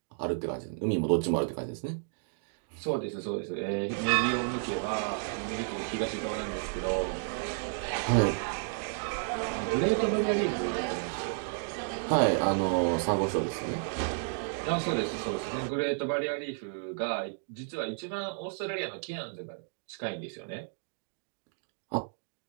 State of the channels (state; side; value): silent; left; digital silence